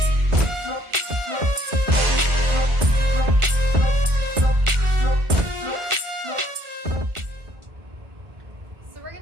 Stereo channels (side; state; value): left; late; 1.4 ms